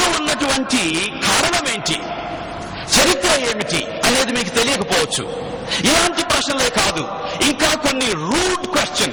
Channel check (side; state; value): both; identical; correlation 1.00